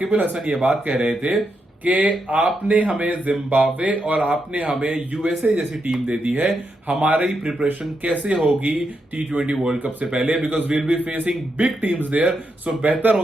अल हसन ये बात कह रहे थे कि आपने हमें जिम्बाब्वे और आपने हमें यूएसए जैसी टीम दे दी है, हमारी प्रिपरेशन कैसे होगी T20 वर्ल्ड कप से पहले, because we'll be facing big teams there. So बेहतर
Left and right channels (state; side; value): normal; both; correlation 0.83